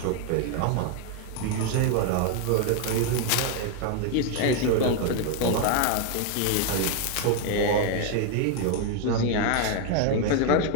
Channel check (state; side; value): different; both; correlation 0.01